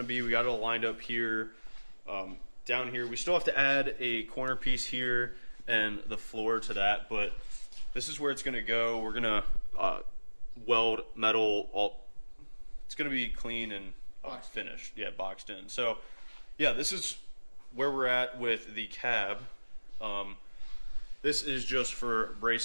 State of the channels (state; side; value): inverted; both; correlation -1.00